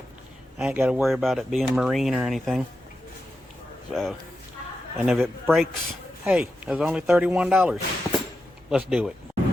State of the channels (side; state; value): both; normal; correlation 0.89